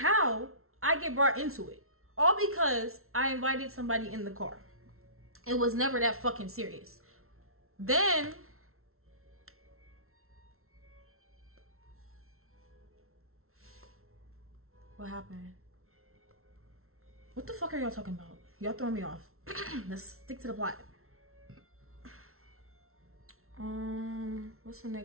I get brought into it. All because I invited somebody in the car. It was never that fucking serious. Then what happened? What the fuck are y'all talking about? Y'all throwing me off. Let's stick to the plot. What's the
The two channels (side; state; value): left; late; 0.62 ms